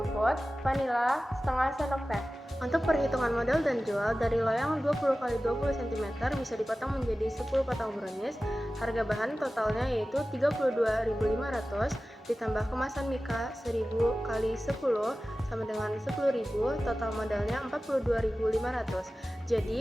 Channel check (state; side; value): normal; both; correlation 0.96